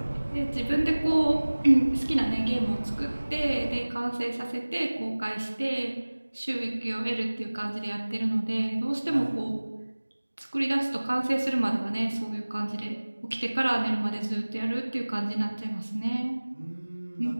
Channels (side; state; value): both; inverted; correlation -1.00